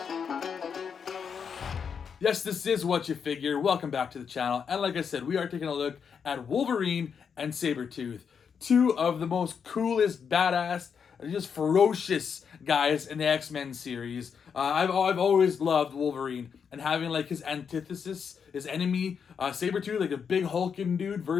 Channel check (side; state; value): right; quieter; 6.7 dB